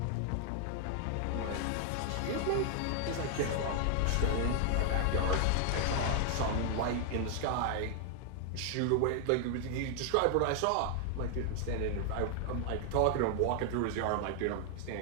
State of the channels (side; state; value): both; different; correlation 0.00